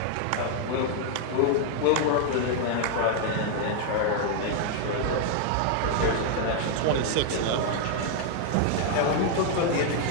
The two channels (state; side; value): different; both; correlation 0.00